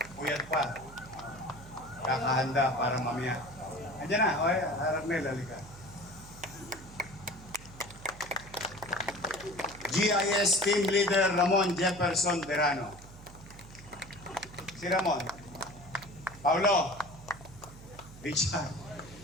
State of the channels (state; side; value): noise; right; hum, 18 dB below the sound